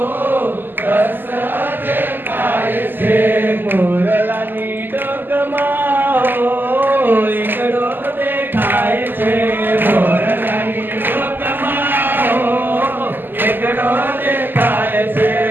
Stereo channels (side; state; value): left; late; 0.092 ms